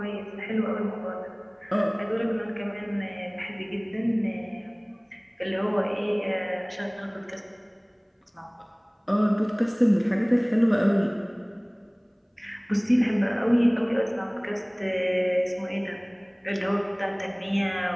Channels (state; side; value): identical; both; correlation 1.00